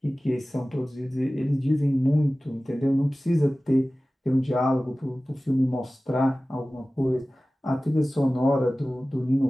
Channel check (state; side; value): normal; both; correlation 0.97